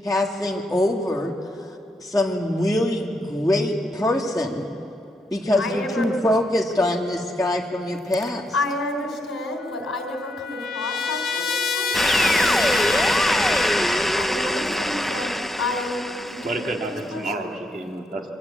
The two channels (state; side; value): normal; both; correlation 0.79